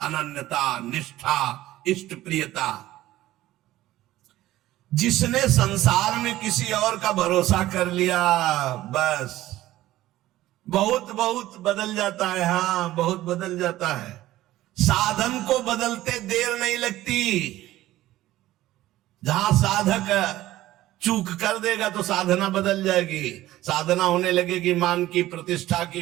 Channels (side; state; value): left; quieter; 15.4 dB